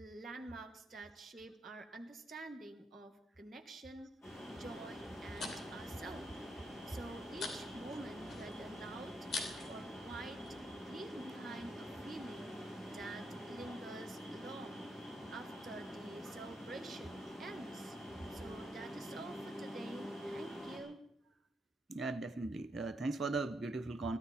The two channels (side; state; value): both; normal; correlation 0.79